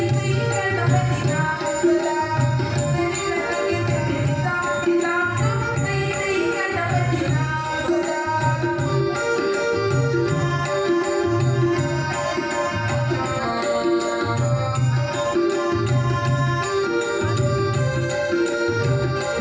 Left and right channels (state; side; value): identical; both; correlation 1.00